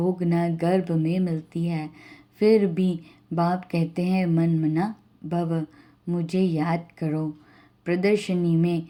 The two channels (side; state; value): both; identical; correlation 1.00